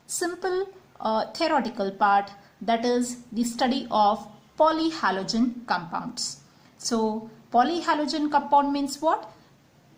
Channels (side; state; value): both; identical; correlation 1.00